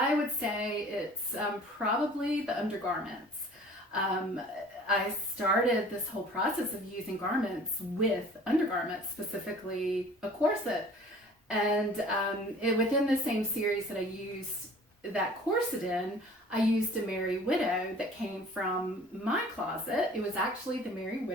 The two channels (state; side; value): normal; both; correlation 0.48